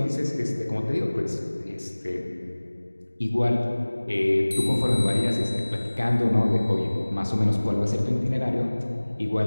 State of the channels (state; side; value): inverted; both; correlation -1.00